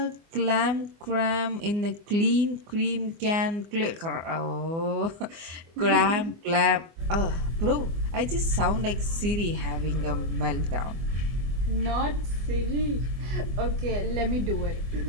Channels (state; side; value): late; left; 24 ms